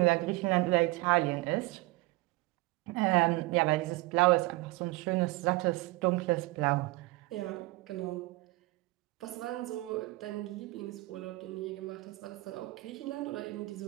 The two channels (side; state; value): left; quieter; 21.7 dB